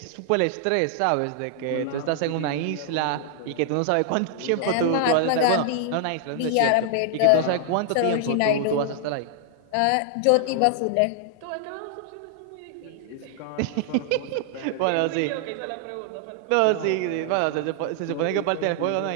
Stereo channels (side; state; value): both; different; correlation 0.00